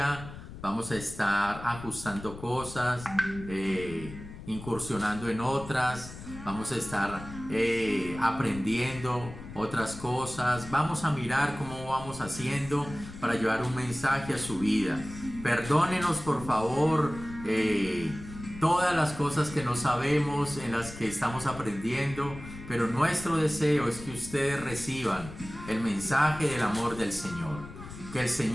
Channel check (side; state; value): left; noise; rumble, 13 dB below the sound